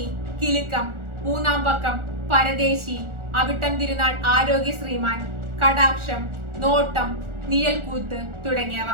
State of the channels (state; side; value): late; left; 1.4 ms